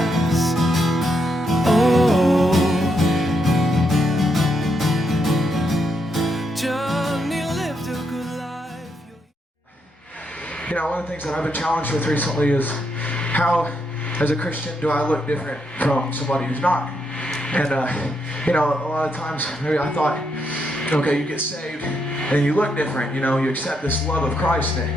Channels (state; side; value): normal; both; correlation 0.79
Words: Oh, Johnny lived a good life. You know, one of the things that I've been challenged with recently is how, as a Christian, do I look different from somebody who's not? And, you know, a lot of times, maybe I thought, okay, you get saved and you look different, you know, you accept this love of Christ and